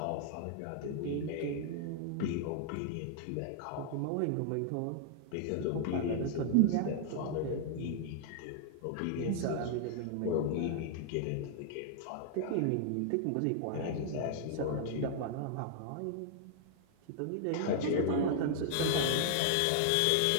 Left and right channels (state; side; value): different; both; correlation -0.01